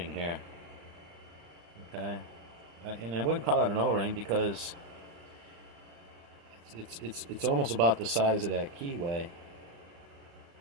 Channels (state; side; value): late; left; 35 ms